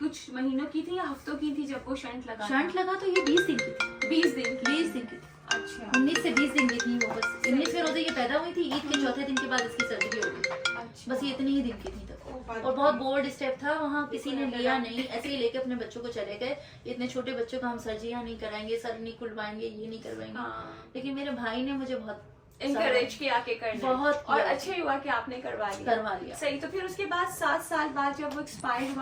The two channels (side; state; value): both; identical; correlation 1.00